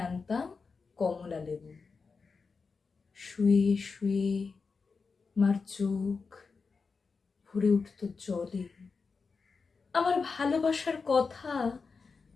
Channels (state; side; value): quieter; right; 4.8 dB